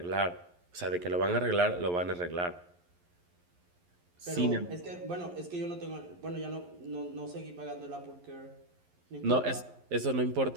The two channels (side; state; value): left; late; 11 ms